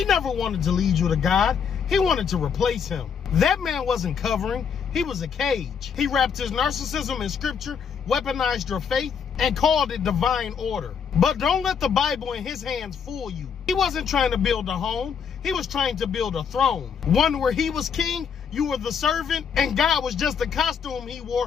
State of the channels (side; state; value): right; quieter; 6.9 dB